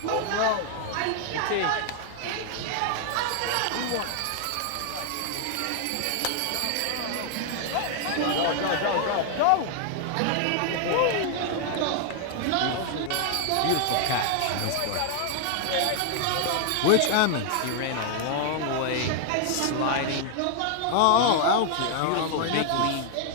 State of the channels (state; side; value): different; both; correlation 0.00